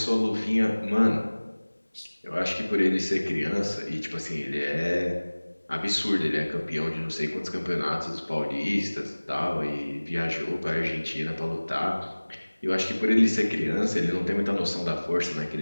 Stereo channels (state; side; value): inverted; both; correlation -1.00